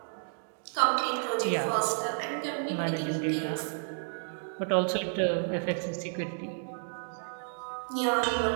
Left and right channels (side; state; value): left; silent; 57 dB below the other